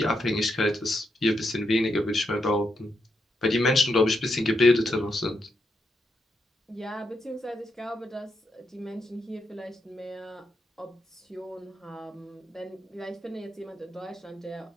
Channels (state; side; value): normal; both; correlation 0.82